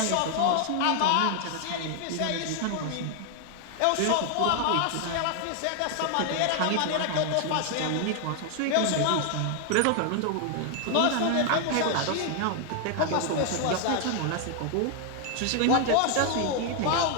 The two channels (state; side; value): different; both; correlation 0.00